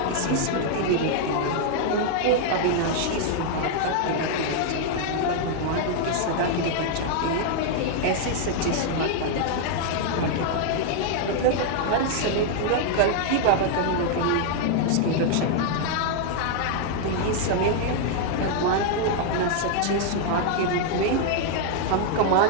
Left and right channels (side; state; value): both; different; correlation 0.00